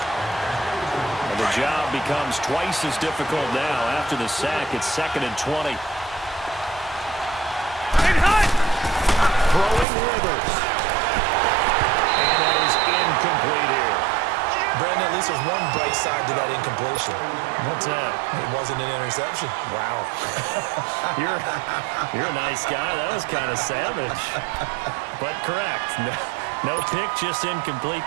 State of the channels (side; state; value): left; drops out; at 9.9 s